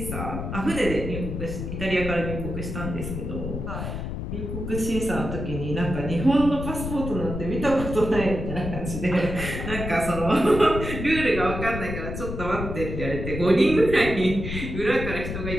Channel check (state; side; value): noise; left; rumble, 5 dB below the sound